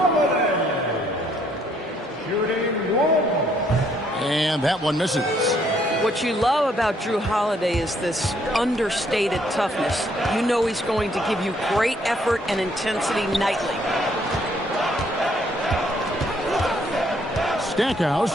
Shooting 1. And that one misses. What you love about Drew Holiday is this understated toughness. You know he's going to give you great effort and intensity nightly.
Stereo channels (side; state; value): both; normal; correlation 0.68